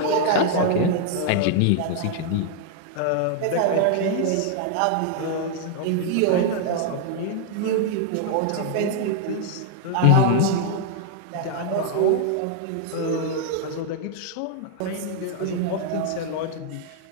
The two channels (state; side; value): different; both; correlation 0.00